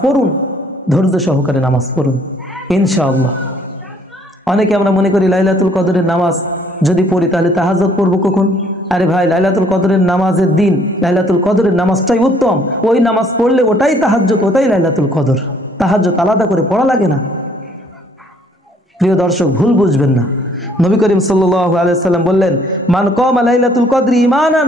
পড়ুন, ধৈর্য সহকারে নামাজ পড়ুন ইনশাআল্লাহ। অনেকে আমরা মনে করি লাইলাতুল কদরের নামাজ যদি পড়ি তাহলে তাহাজ্জুদ পড়বো কখন? আরে ভাই, লাইলাতুল কদরের নামাজের দিন লাইলাতুল কদরের নামাজটাই উত্তম। ওই নামাজ পড়লে ওটাই তাহাজ্জুদ, ওটাই লাইলাতুল কদর। তাহাজ্জুদ আলাদা করে পড়া লাগে না। প্রিয় দর্শক, ভুল বুঝবেন না। নবী করিম সাল্লাল্লাহু আলাইহি ওয়াসাল্লাম বললেন, মান কামা লাইলাতুল কদরি ঈমানান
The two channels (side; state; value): both; normal; correlation 0.62